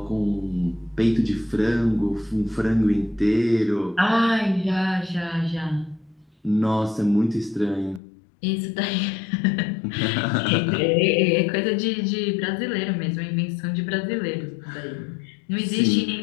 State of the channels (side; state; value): right; drops out; at 8.0 s